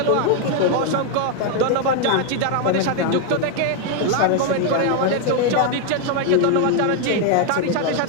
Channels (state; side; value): different; both; correlation 0.01